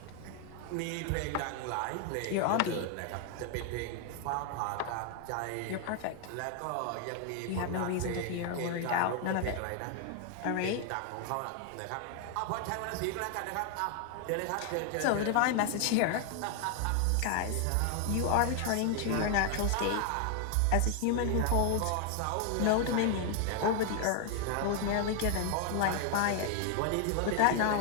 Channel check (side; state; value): both; different; correlation 0.00